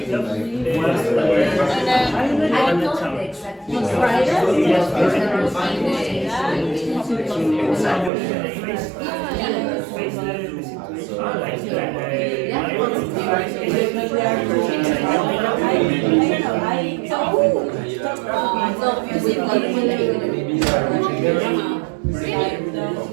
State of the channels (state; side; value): drops out; left; at 8.1 s